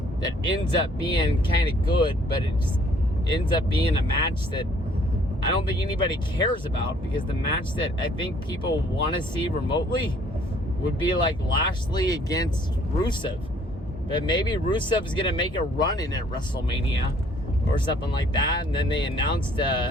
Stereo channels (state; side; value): normal; both; correlation 0.60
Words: that ends up being kind of good, but it just ends up being a match that I don't think anybody cares about, because the match that I think people want to see remotely would be like Lashley against Rusev. But maybe Rusev is going to make a run in at WrestleMania or something like that, and then they announced